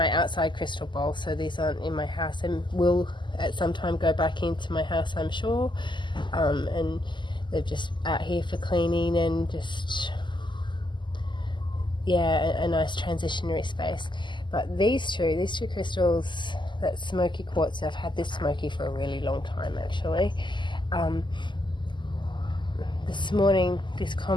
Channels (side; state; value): right; late; 0.22 ms